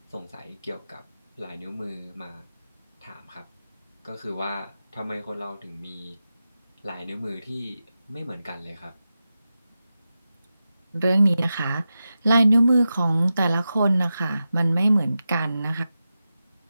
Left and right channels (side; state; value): both; inverted; correlation -0.92